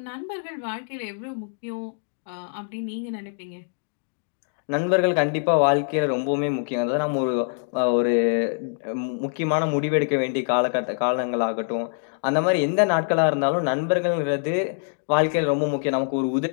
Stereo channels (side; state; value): right; silent; digital silence